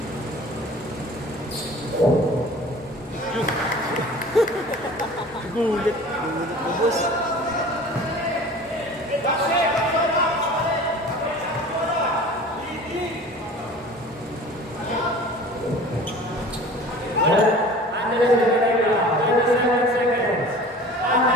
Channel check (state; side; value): normal; both; correlation 0.42